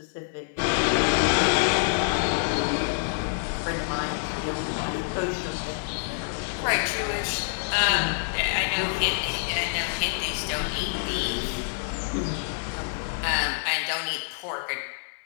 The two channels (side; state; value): right; silent; digital silence